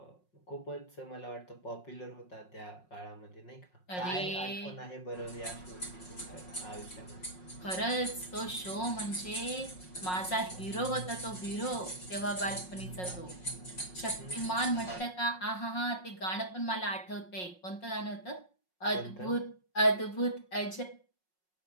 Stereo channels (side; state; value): right; late; 5.5 ms